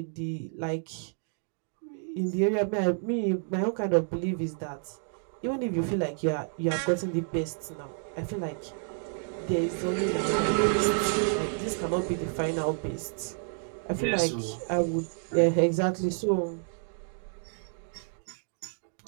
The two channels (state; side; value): silent; left; 58 dB below the other